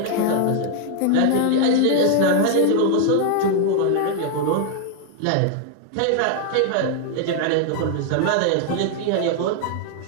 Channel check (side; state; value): both; different; correlation 0.00